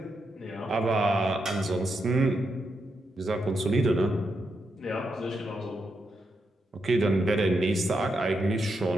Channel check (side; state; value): both; normal; correlation 0.83